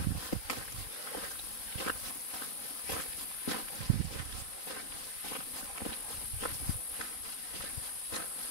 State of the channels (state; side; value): late; right; 3.9 ms